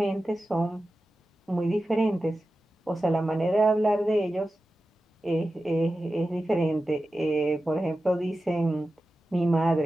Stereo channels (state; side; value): normal; both; correlation 0.93